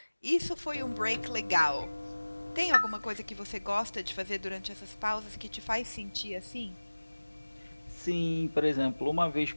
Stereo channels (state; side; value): inverted; both; correlation -1.00